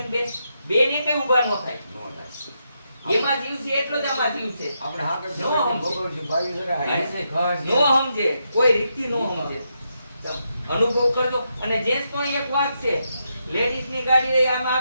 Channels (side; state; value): both; inverted; correlation -0.82